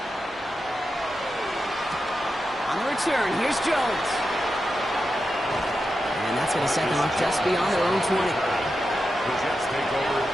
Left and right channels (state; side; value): normal; both; correlation 0.89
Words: On the return, here's Jones. And that's going to set them up just beyond their own 20. The Jets take over